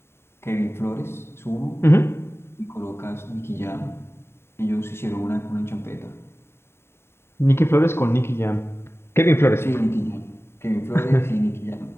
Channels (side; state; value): right; late; 0.12 ms